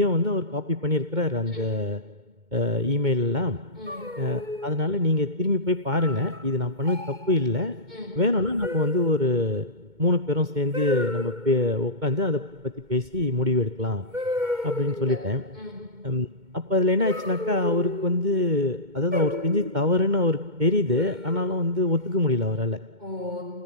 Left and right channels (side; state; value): left; late; 2.2 ms